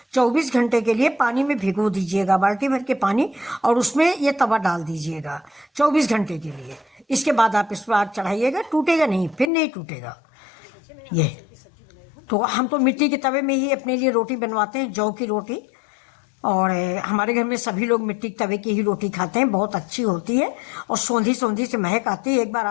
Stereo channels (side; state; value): right; drops out; at 9.5 s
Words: 24 घंटे के लिए पानी में भिगो दीजिएगा, बाल्टी भर के पानी, और उसमें ये तवा डाल दीजिएगा 24 घंटे के लिए। इसके बाद आप इस पर आग चढ़ाइएगा, टूटेगा नहीं, फिर नहीं टूटेगा। ये तो हम तो मिट्टी के तवे में ही अपने लिए रोटी बनवाते हैं, जौ की रोटी। और हमारे घर में सभी लोग मिट्टी के तवे की ही रोटी खाते हैं, बहुत अच्छी होती है और सौंधी सौंधी से महक आती है। एक बार